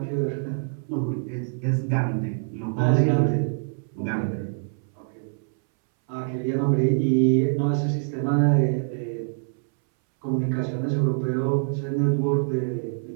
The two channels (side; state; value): left; silent; 62 dB below the other